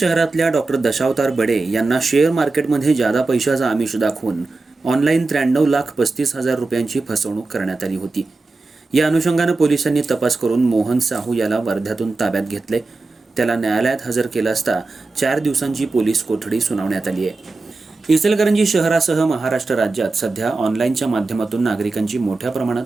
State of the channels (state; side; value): quieter; left; 3.5 dB